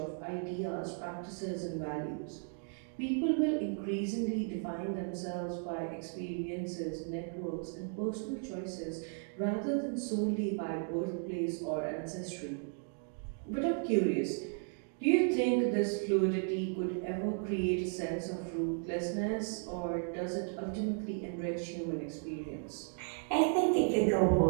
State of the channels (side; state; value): left; silent; 54 dB below the other